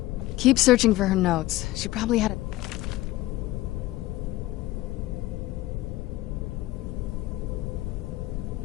Keep searching for her notes. She probably had a...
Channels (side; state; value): right; quieter; 17.2 dB